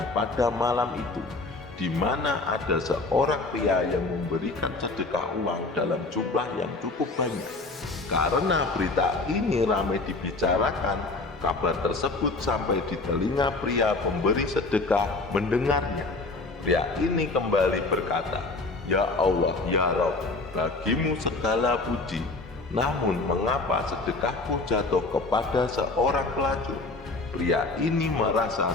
pada malam itu, di mana ada seorang pria yang memberikan sedekah uang dalam jumlah yang cukup banyak. Karena berita ini ramai dibicarakan, kabar tersebut sampai di telinga pria pemberi sedekah mendengarnya. Pria ini kembali berkata, "Ya Allah, ya Rabb, bagimu segala puji. Namun mengapa sedekahku jatuh kepada seorang pelacur?" Pria ini merasa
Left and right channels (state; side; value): quieter; right; 3.4 dB